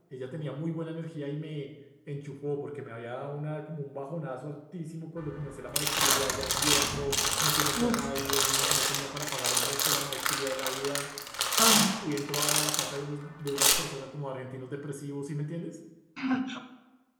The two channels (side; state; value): both; identical; correlation 1.00